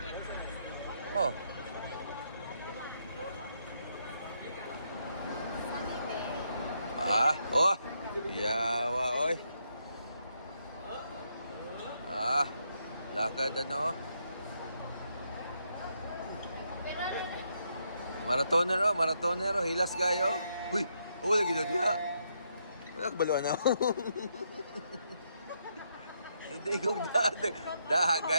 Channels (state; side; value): inverted; both; correlation -0.78